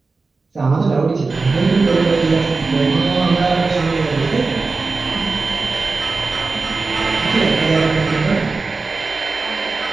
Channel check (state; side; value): quieter; left; 4.0 dB